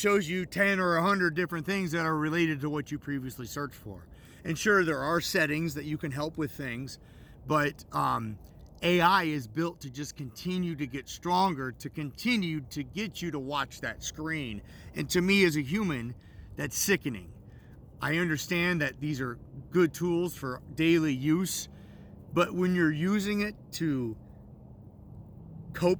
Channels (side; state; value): both; identical; correlation 1.00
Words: you 10 or 100 different things that are related to what you previously searched for. And sure, there are settings that you can help with things, but AI is built to just continue to get stronger, to continue to get you to watch that screen. And to me, as a human, that's sickening. I understand that these are good tools for daily use, but when you're using it to